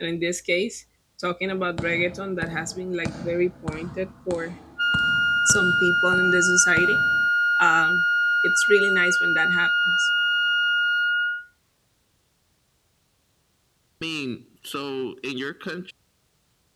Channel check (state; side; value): identical; both; correlation 1.00